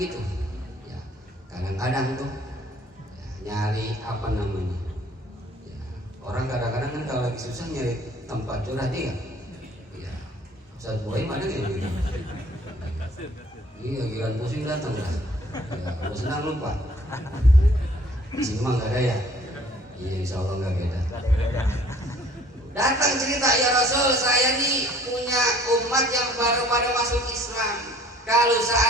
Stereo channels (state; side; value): normal; both; correlation 0.55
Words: ya. Kadang-kadang tuh ya, nyari apa namanya ya, orang kadang-kadang kan kalau lagi susah nyari tempat curhat dia ya. Ustaz Boy mana kayak gitu, iya giliran pusing datang lah ya, kalau senang lupa. Di sini mah nggak ada ya, iya insya Allah nggak beda. Datang cerita, ya Rasul, saya nih punya umat yang baru pada masuk Islam. Kalau